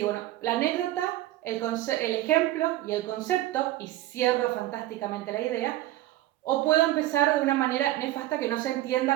bueno, la anécdota, el ejemplo y el concepto, y cierro fantásticamente la idea, o puedo empezar de una manera nefasta que no se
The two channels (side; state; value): left; quieter; 15.4 dB